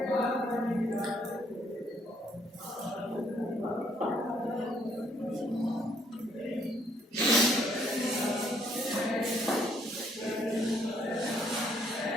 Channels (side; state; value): both; normal; correlation 0.67